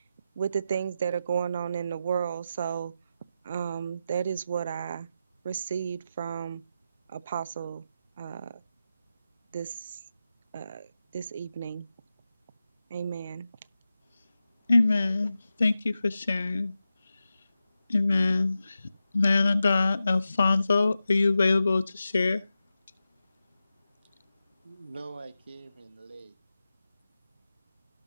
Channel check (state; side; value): inverted; both; correlation -0.91